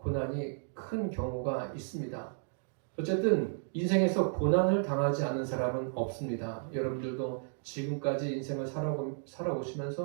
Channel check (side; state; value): left; silent; digital silence